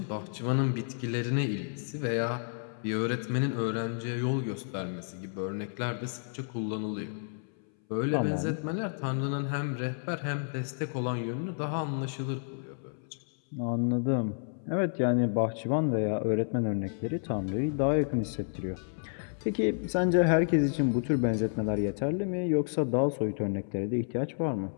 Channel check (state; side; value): silent; right; 57 dB below the other